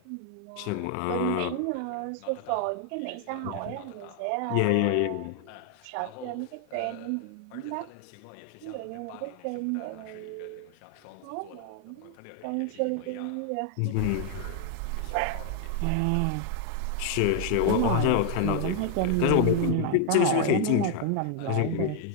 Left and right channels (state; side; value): different; both; correlation 0.00